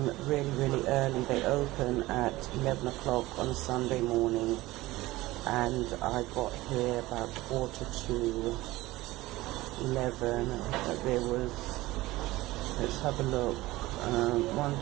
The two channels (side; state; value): left; quieter; 18.6 dB